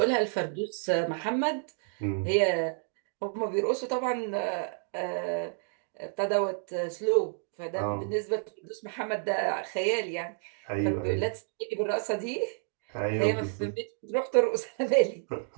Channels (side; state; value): left; silent; 58 dB below the other